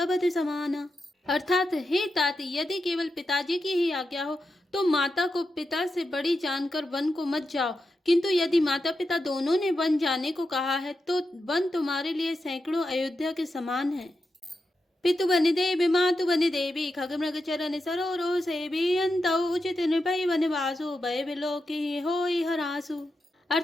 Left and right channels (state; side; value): normal; both; correlation 0.88